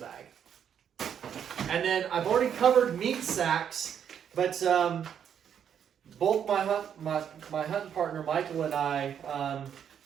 And then I've already covered meat sacks, but both my hunting partner Michael and I,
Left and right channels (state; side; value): quieter; left; 8.5 dB